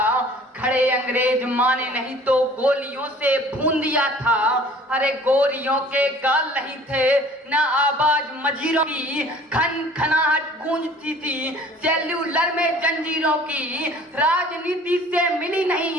खड़े अंग्रेज माने नहीं तो गोलियों से भून दिया था। अरे गोरियों के गाल नहीं थे ना आवाज मजीरों की, खन खनाहट गूंजती थी सेल्यूलर में जंजीरों की। राजनीति से मिली नहीं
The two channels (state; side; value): normal; both; correlation 0.50